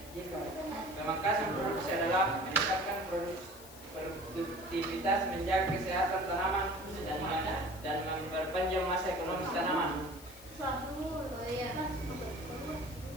baca. Pemangkasan produksi adalah meningkatkan produktivitas, menjaga kesehatan tanaman, dan memperpanjang masa ekonomis tanaman. Suatu. Oh iya. Terima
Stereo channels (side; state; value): left; noise; hiss, 18 dB below the sound